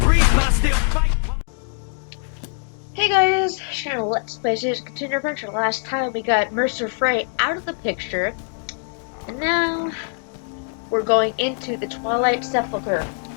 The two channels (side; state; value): right; silent; 55 dB below the other